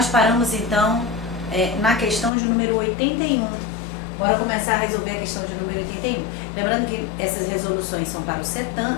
paramos, então, na questão de número 81. Bora começar a resolver a questão de número 81. Lembrando que essas resoluções são para o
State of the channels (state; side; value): drops out; right; at 2.3 s